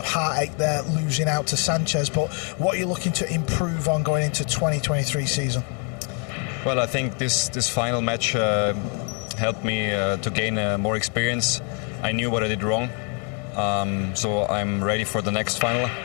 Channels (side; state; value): right; quieter; 38.6 dB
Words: heartache there, losing out to Sanchez, but what are you looking to improve on going into 2023 season? Well, I think this final match helped me to gain more experience. I knew what I did wrong, so I'm ready for the next final.